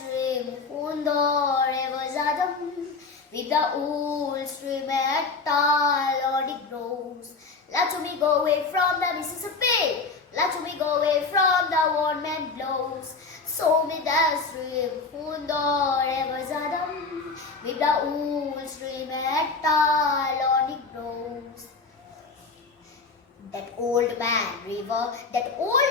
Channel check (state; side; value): quieter; right; 4.2 dB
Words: rivers Adam with the old stream at tall on it grows. Let me go away from the Mississippi. Let me go away from the warm and blows. So me that stream rivers Adam with the old stream at tall on it grows. That old man river,